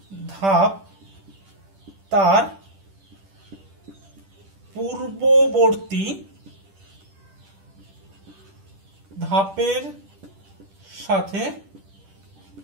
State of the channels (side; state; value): left; late; 10 ms